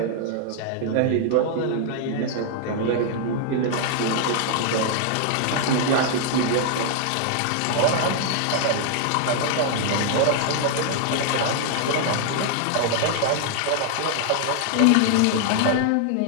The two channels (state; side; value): different; both; correlation 0.00